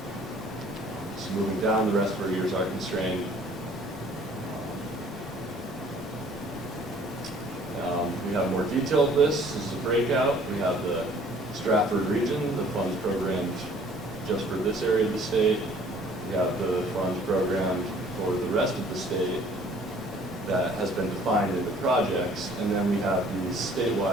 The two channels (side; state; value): both; normal; correlation 0.55